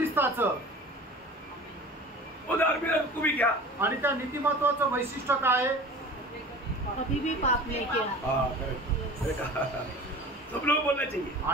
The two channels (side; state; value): both; normal; correlation 0.39